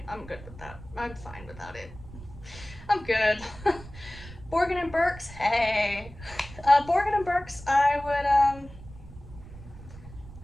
good with that. I'm fine without it. I'm good. Borgin and Burkes, hey. Borgin and Burkes, I would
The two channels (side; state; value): right; noise; rumble, 16 dB below the sound